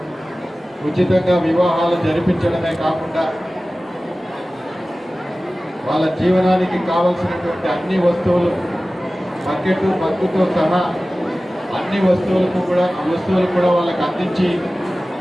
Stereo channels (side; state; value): both; normal; correlation 0.96